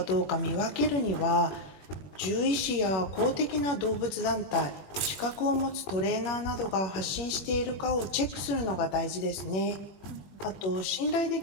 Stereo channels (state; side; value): late; right; 21 ms